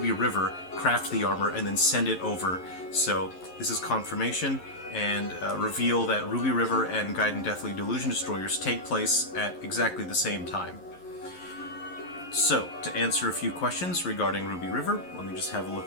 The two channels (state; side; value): late; right; 11 ms